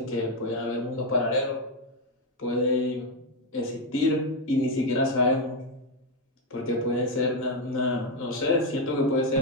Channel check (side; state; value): both; normal; correlation 0.05